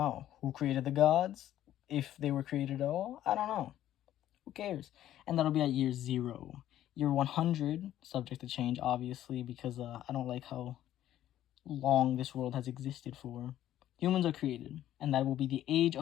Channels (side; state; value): right; quieter; 12.4 dB